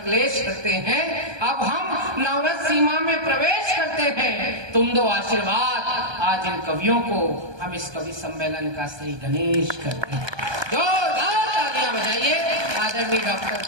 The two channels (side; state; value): left; late; 1.2 ms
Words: करते हैं, अब हम नवरस सीमा में प्रवेश करते हैं, तुम दो आशीर्वाद। आज इन कवियों को हम इस कवि सम्मेलन का श्री गणेश करते हैं। जोरदार तालियां बजाइए। आदरणीय डॉक्टर